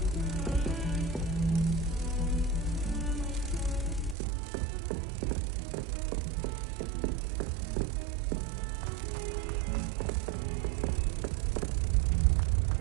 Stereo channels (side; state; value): left; drops out; at 4.2 s